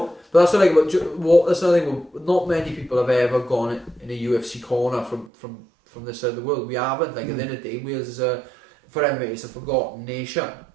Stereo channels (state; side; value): drops out; left; at 5.3 s